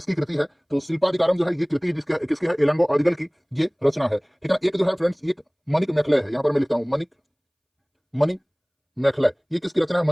कृति है। तो शिल्पाधिकारम जो है ये कृति किसकी है, इलांगो अदिगल की ये रचना है, ठीक है ना। एक जो है फ्रेंड्स एक मणिक मेखले है, यहाँ पर मैं लिखता हूँ मणिक मेखले, ये किसकी रचना है,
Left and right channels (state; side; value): identical; both; correlation 1.00